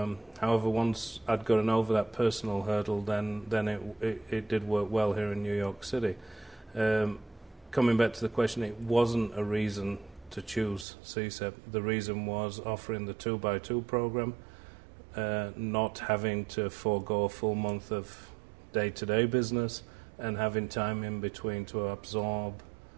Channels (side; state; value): left; drops out; at 10.9 s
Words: once I'd gotten over that personal hurdle, then it did work well here in New York City. Coming back to the question, it wasn't a reason to choose CSEP. The reason was offering the 2x2 program, not having to forego a full month of day-to-day business, and having time in between to absorb